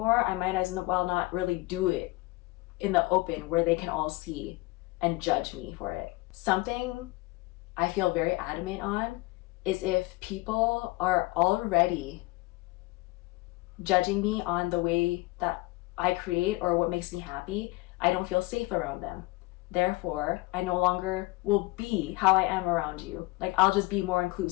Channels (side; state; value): right; quieter; 21.6 dB